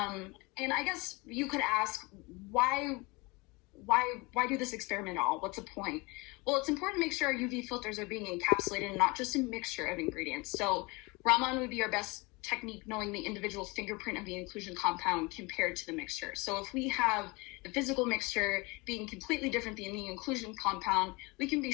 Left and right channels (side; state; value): right; quieter; 25.9 dB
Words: I guess you could ask, why do this experiment at all? What's the point? Well, it's important to make sure our UV filters are being encapsulated and not just a mixture of ingredients. So Raman would be our best technique, knowing the individual fingerprint of the inclusion compound compared to the mixture. So if we have the physical mixture being completely different than the inclusion compound, we can be